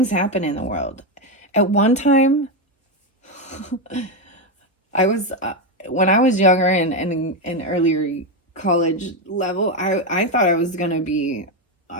happen in the world. At one time, when I was younger and in earlier college level, I thought I was gonna be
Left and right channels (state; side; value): normal; both; correlation 0.08